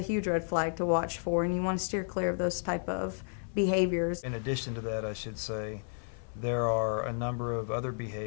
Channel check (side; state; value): right; silent; 56 dB below the other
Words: huge red flag to watch for, and you want to steer clear of those type of behaviors. In addition to that, I should say, there are a number of other